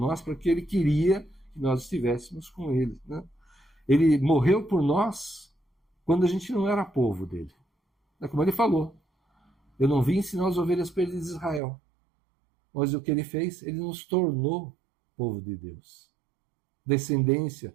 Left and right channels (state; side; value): drops out; left; at 11.6 s